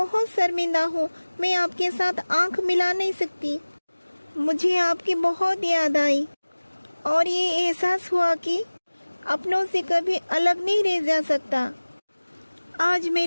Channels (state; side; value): inverted; both; correlation -1.00